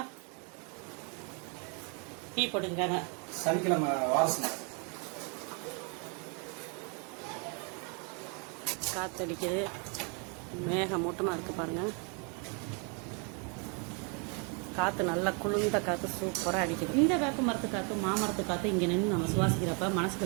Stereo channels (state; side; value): quieter; left; 36.0 dB